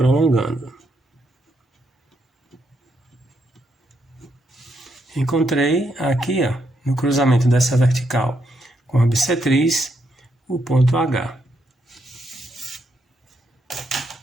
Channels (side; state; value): both; normal; correlation 0.78